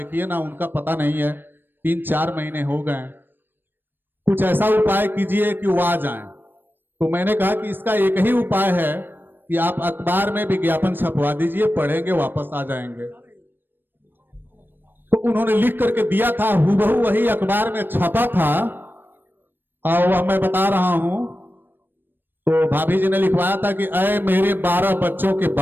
ना उनका पता नहीं है, 3-4 महीने हो गए, कुछ ऐसा उपाय कीजिए कि वो आ जाएं। तो मैंने कहा कि इसका एक ही उपाय है कि आप अखबार में विज्ञापन छपवा दीजिए, पढ़ेंगे वापस आ जाएंगे। तो उन्होंने लिख करके दिया था, हूबहू वही अखबार में छपा था और वह मैं बता रहा हूं। तो भाभी जी ने लिखवाया था कि अय मेरे 12 बच्चों के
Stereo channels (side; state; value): left; late; 0.095 ms